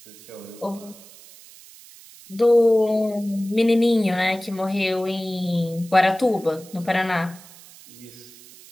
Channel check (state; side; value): noise; right; hiss, 21 dB below the sound